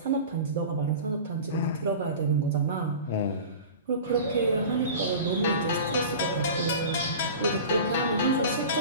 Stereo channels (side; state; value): both; inverted; correlation -0.35